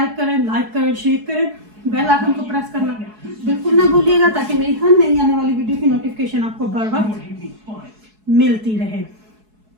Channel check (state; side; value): late; left; 4.7 ms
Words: करें, लाइक करें, शेयर करें, बेल आइकन को प्रेस करना बिल्कुल ना भूलिएगा ताकि मेरी हर नई आने वाली वीडियो की नोटिफिकेशन आपको बर वक्त मिलती रहे।